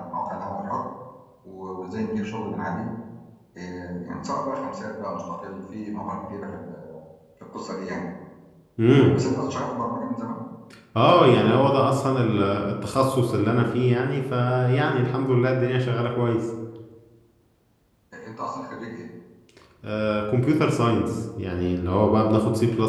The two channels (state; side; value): identical; both; correlation 1.00